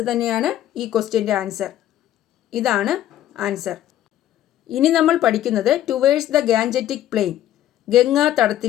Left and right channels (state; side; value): quieter; right; 12.3 dB